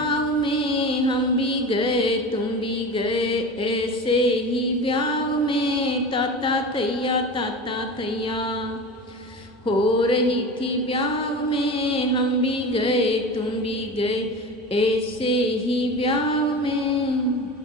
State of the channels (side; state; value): both; normal; correlation 0.30